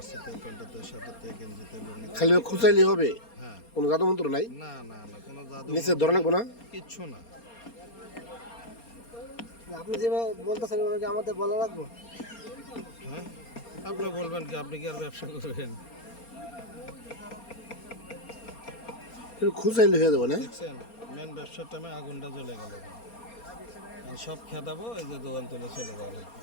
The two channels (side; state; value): right; late; 4.3 ms